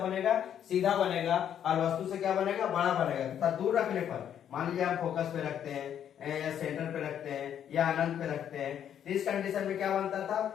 बनेगा, सीधा बनेगा, और वस्तु से क्या बनेगा, बड़ा बनेगा। तथा दूर रखने पर, मान लीजिए हम फोकस पे रखते हैं या सेंटर पे रखते हैं या अनंत पे रखते हैं, इस कंडीशन में क्या बनता था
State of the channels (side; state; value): right; quieter; 9.5 dB